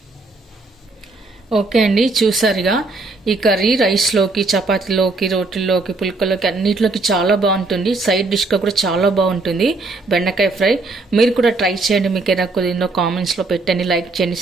ఓకే అండి, చూసారుగా ఈ కర్రీ రైస్లోకి, చపాతీలోకి, రోటీల్లోకి, పుల్కలోకి అన్నిటిలోకి చాలా బాగుంటుంది. సైడ్ డిష్గా కూడా చాలా బాగుంటుంది బెండకాయ ఫ్రై. మీరు కూడా ట్రై చేయండి. మీకు ఏదైనా కుదిరిందో కామెంట్స్లో పెట్టండి, లైక్ చేయండి,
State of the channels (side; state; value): left; quieter; 3.4 dB